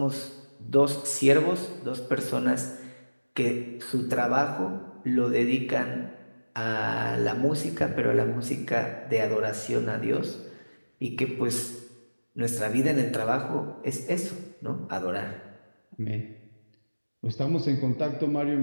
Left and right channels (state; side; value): inverted; both; correlation -1.00